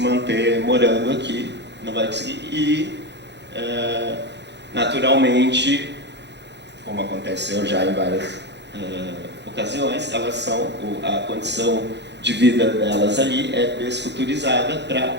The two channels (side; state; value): left; late; 0.50 ms